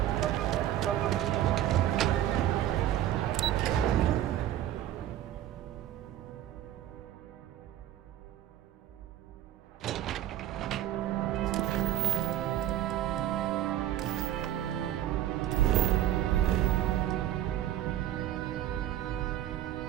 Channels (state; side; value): quieter; left; 12.4 dB